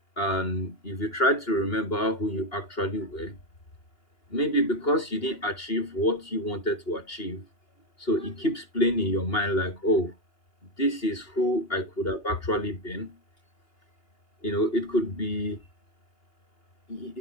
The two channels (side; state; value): right; late; 2.8 ms